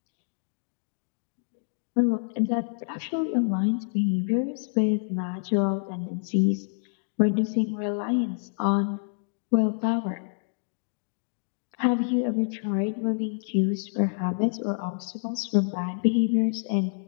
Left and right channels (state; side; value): silent; right; digital silence